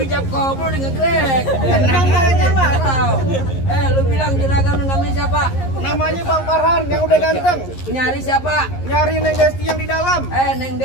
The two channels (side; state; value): right; late; 11 ms